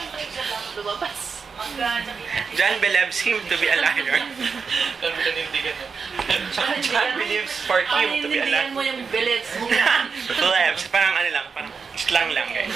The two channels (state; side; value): quieter; left; 5.5 dB